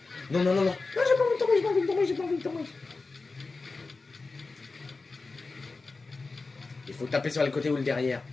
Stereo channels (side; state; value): right; quieter; 3.8 dB